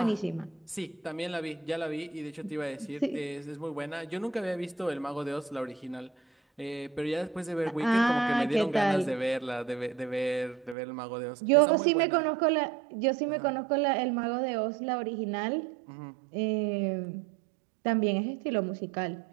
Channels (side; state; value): left; drops out; at 10.8 s